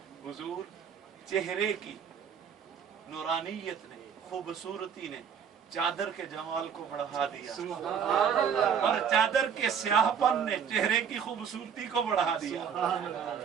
حضور چہرے کی نورانیت نے خوبصورتی نے چادر کے جمال کو بڑھا دیا اور چادر کے سیاہ پن نے چہرے کی خوبصورتی کو بڑھا دیا.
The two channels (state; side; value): quieter; left; 7.4 dB